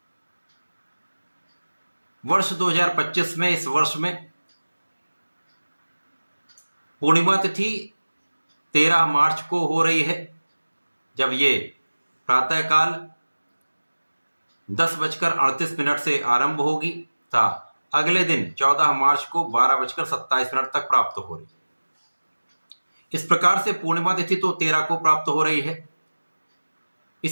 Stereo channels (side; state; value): both; inverted; correlation -1.00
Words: वर्ष 2025 में, इस वर्ष में पूर्णिमा तिथि 13 मार्च को हो रही है, जब ये प्रातःकाल 10:38 से आरंभ होगी तथा अगले दिन 14 मार्च को 12:27 तक प्राप्त हो रही है। इस प्रकार से पूर्णिमा तिथि तो 13 को प्राप्त हो रही है।